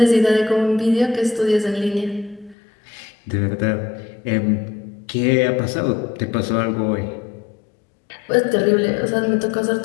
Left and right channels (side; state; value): right; drops out; at 2.6 s